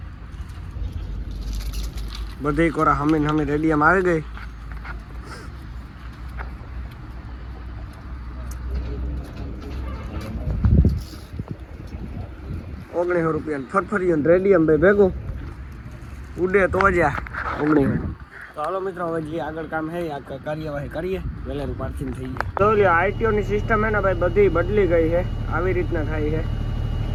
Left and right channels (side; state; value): both; identical; correlation 1.00